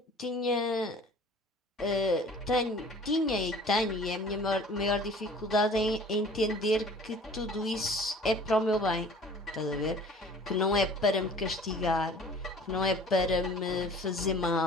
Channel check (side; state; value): both; normal; correlation 0.47